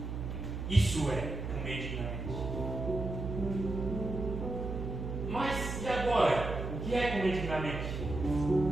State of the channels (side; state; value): right; noise; hum, 5 dB below the sound